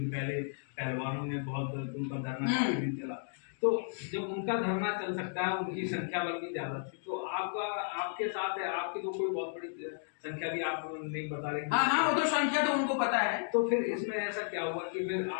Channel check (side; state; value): right; silent; digital silence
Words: पहले पहलवानों ने बहुत उनका धरना चला। तो जब उनका धरना चल सकता है, उनकी संख्या बल भी ज्यादा थी, तो आपके साथ है, आपकी तो कोई बहुत बड़ी संख्या भी आप नहीं बता रहे। हाँ, वो तो संख्या तो उनको पता है। तो फिर इसमें ऐसा क्या हुआ कि फिर